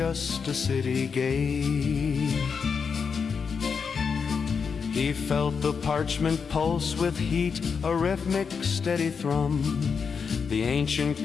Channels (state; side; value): quieter; right; 5.9 dB